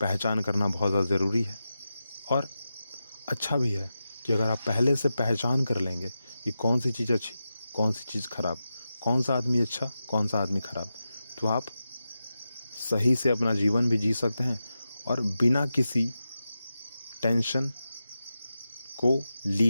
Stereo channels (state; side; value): inverted; both; correlation -0.91